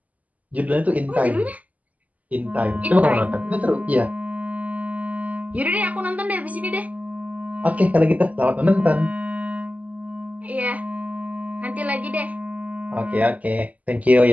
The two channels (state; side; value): late; left; 0.074 ms